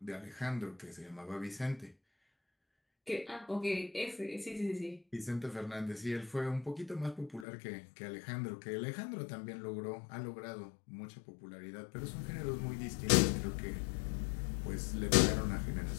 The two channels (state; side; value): drops out; right; at 7.5 s